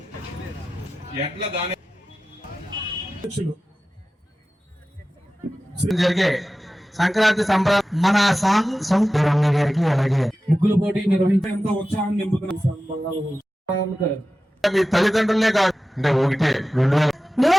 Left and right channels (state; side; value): normal; both; correlation 0.95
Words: ఎట్లా దాని జరిగే సంక్రాంతి సంబరాలు మన గారికి అలాగే ముగ్గుల పోటీ నిర్వహించేంత ఉత్సాహం నింపుతున్న మీ తల్లిదండ్రులే కాదు అంటే ఒకటే